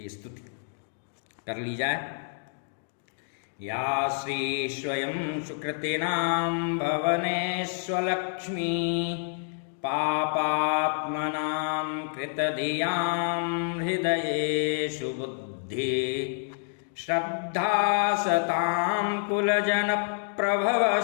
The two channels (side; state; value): right; silent; digital silence